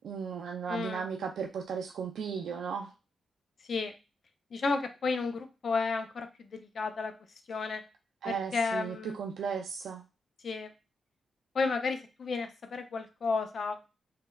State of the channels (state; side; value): normal; both; correlation 0.80